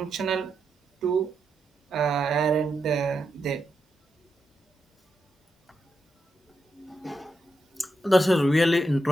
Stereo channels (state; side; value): normal; both; correlation 0.85